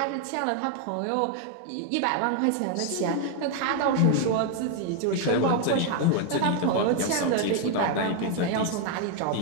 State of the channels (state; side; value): different; both; correlation 0.00